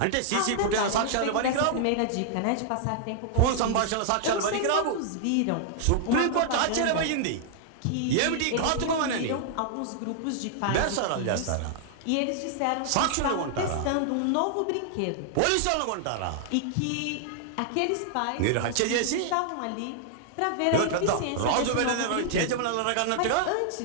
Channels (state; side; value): different; both; correlation -0.01